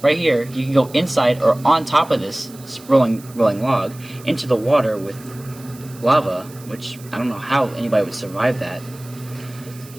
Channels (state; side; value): noise; right; hiss, 21 dB below the sound